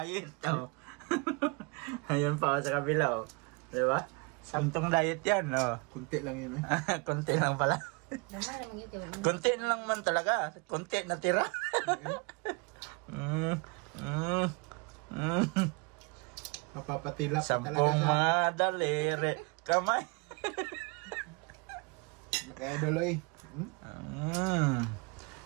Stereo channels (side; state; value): left; quieter; 31.0 dB